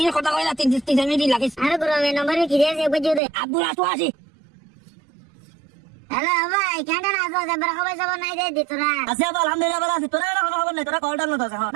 কথা কইলা 3 মিনিট লাগিস আরে গুরমে নম্বরে কি দিয়েছে বুঝিও দে আব্দুল আসো আসি হ্যালো ভাই কেন না আসো জবর খবর জবর নাই দে দিতরা আছে আলহামদুলিল্লাহ ভালো আছি তোরা কোনো খবর নাই তোরা কলটা না তো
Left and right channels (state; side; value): drops out; left; at 3.2 s